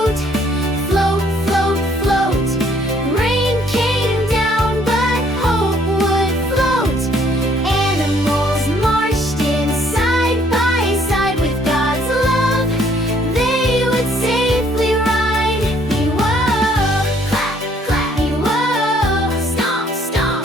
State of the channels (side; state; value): both; normal; correlation 0.64